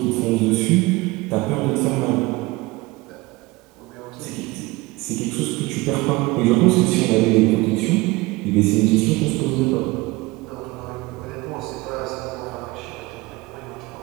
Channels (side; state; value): left; quieter; 22.0 dB